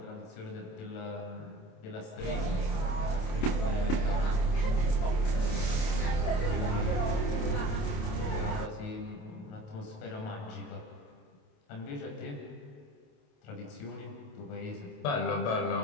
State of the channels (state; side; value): late; right; 28 ms